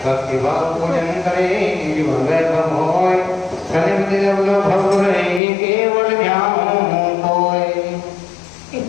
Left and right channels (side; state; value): right; drops out; at 5.4 s